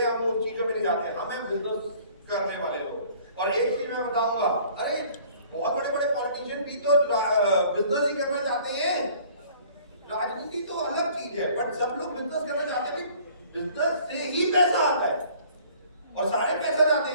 हम उन चीजों में नहीं जाते हैं, हमें बिजनेस करने वाले लोग। और एक चीज मैं बताऊंगा, अरे बहुत बड़े बड़े पॉलिटिशियन भी तो बिजनेस ही करना चाहते हैं। राजनीति तो अलग चीज है, बट सब लोग बिजनेस करना चाहते हैं। बिजनेस से ही पैसा आता है और सारे पैसा जाते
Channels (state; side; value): inverted; both; correlation -0.54